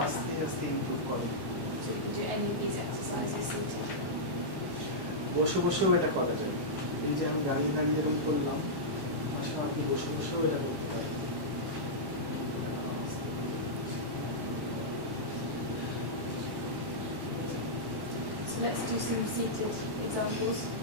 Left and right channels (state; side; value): late; left; 1.1 ms